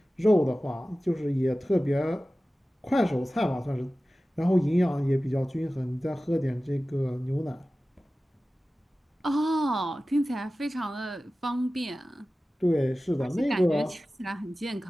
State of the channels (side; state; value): both; normal; correlation 0.96